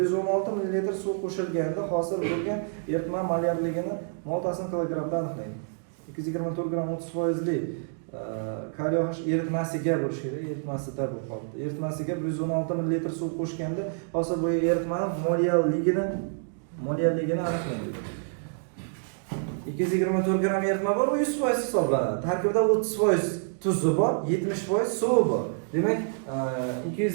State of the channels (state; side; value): silent; left; digital silence